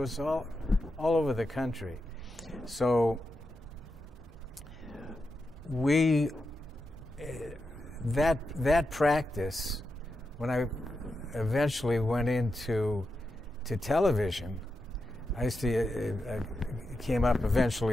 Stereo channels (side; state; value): both; normal; correlation 0.87